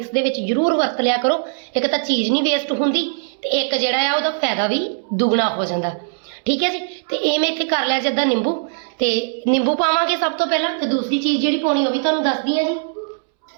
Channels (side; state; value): left; silent; 66 dB below the other